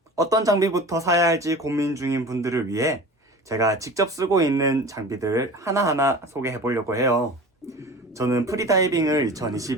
어떤 장비부터 사야 할지 고민 중인 분들을 위해 제가 직접 쓰고 있는 장비들을 하나하나 소개해 보려고 해요. 저는 프리다이빙을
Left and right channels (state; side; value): normal; both; correlation 0.37